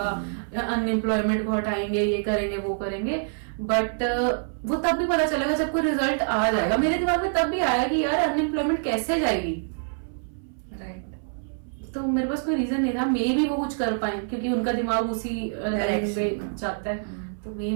अनएम्प्लॉयमेंट को हटाएंगे, ये करेंगे, वो करेंगे, बट वो तब भी पता चलेगा जब कोई रिजल्ट आ जाएगा। मेरे दिमाग में तब भी आया कि यार अनएम्प्लॉयमेंट कैसे जाएगी, तो मेरे पास कोई रीजन नहीं था। मे भी वो कुछ कर पाए क्योंकि उनका दिमाग उसी में जाता है। तो मे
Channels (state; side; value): silent; left; 61 dB below the other